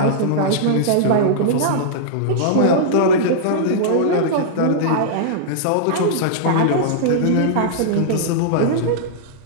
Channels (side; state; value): both; different; correlation -0.02